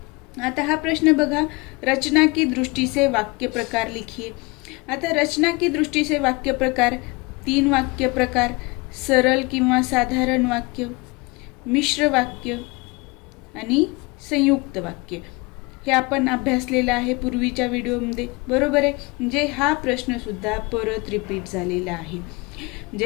आता हा प्रश्न बघा, रचना की दृष्टि से वाक्य प्रकार लिखिए. आता रचना की दृष्टि से वाक्य प्रकार 3 वाक्य प्रकार: सरल किंवा साधारण वाक्य, मिश्र वाक्य आणि संयुक्त वाक्य. हे आपण अभ्यासलेलं आहे पूर्वीच्या व्हिडिओमध्ये, बरोबर आहे. म्हणजे हा प्रश्न सुद्धा परत रिपीट झालेला आहे.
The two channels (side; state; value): right; quieter; 26.1 dB